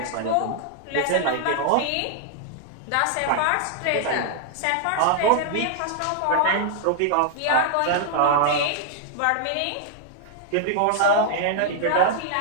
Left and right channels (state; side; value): different; both; correlation -0.01